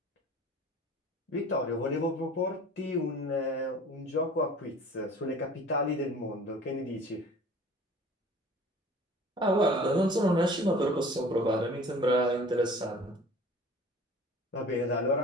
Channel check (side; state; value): both; normal; correlation 0.45